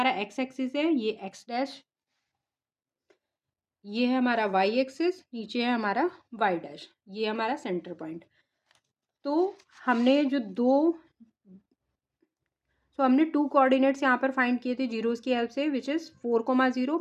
x एक्सिस है, ये x', ये है हमारा y एक्सिस, नीचे है हमारा y', ये हमारा सेंटर पॉइंट। तो हमने जो हमने 2 कोऑर्डिनेट्स यहाँ पर फाइंड किए थे जीरोस की हेल्प से, विच इज़ 4, 0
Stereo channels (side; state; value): both; identical; correlation 1.00